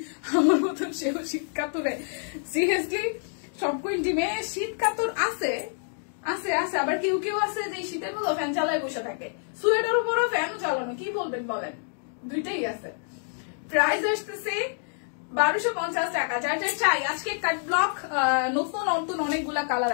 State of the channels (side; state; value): right; silent; digital silence